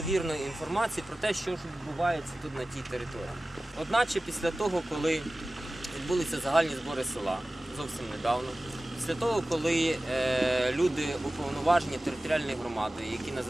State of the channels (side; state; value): both; normal; correlation 0.96